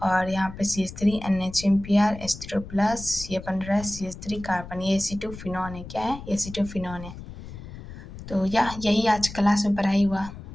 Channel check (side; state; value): left; noise; rumble, 13 dB below the sound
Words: और यहाँ पे CH3 NHMPr H3+, ये बन रहा है CH3 कार्बन, ये एसिटोफिनॉन है। क्या है, एसिटोफिनॉन है। तो यही आज क्लास में पढ़ाई हुआ।